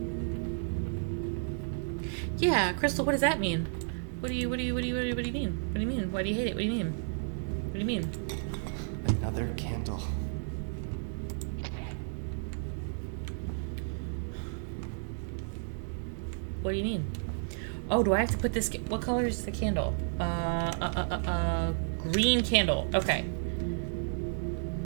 Yeah, Crystal, what does that mean? What do you mean? What do you mean? Why do you hate it? What do you mean? What do you mean? Another candle. What do you mean? Oh, do I have to put this? What color is the candle? Green candle. Okay.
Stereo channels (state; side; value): silent; left; digital silence